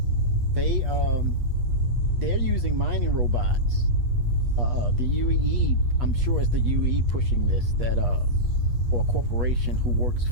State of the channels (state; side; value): late; left; 8.3 ms